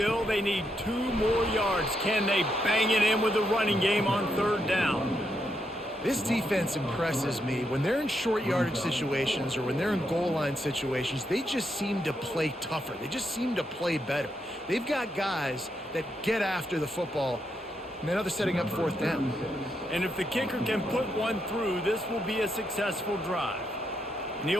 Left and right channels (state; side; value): normal; both; correlation 0.80